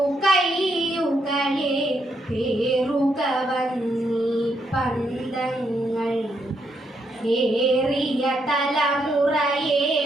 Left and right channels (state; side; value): normal; both; correlation 0.77